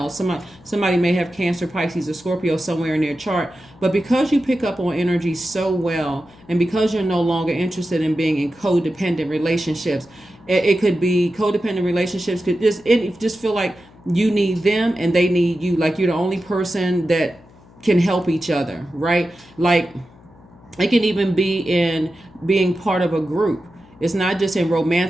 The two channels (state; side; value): noise; left; hum, 25 dB below the sound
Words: Somebody may have Cancer, Pisces, or Scorpio somewhere in their chart, but because you pick up on energy so well, and because you're no longer interested in being in codependent relationships, it could be codependent relationships could just feel like you need them and they need you. Like you're the only person that can help each other, right? Like it can even be in being part of a group. It's not just in